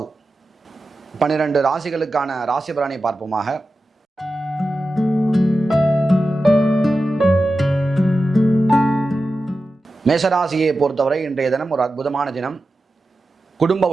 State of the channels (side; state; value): both; normal; correlation 0.93